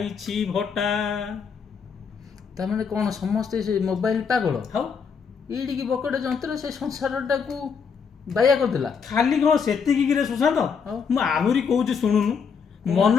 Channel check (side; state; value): right; quieter; 6.1 dB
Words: ଭଟା। ତାମାନେ କ'ଣ ସମସ୍ତେ ସେ ମୋବାଇଲ ପାଗଳ? ହଉ ଏଡ଼ିକି ବକଟେ ଯନ୍ତ୍ର ସେ ସଂସାରଟାକୁ ବାୟା କରିଦେଲା। ଖାଲି କ'ଣ ସେତିକି କିରେ ସୁଶାନ୍ତ? ଆଉ? ମୁଁ ଆହୁରି କହୁଛି ଶୁଣୁନୁ, ମନ